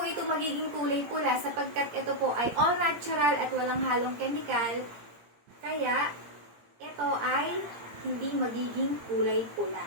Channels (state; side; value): late; left; 17 ms